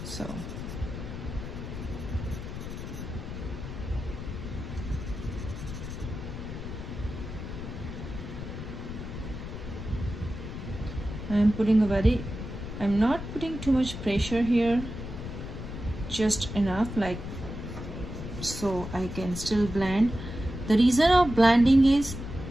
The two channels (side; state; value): left; noise; rumble, 8 dB below the sound